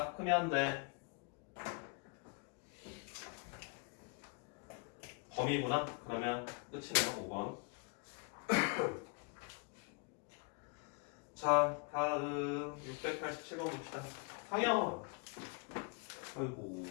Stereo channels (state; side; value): quieter; right; 34.3 dB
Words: 크면 돼. 범위구나? 그러면 끝이네요. 5번. 자, 다음 687번 봅시다. 상영. 아이고,